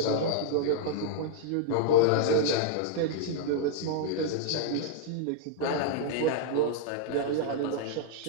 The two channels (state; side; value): different; both; correlation -0.01